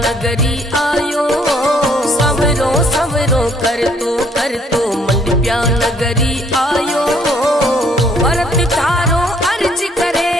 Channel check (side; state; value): both; normal; correlation 0.64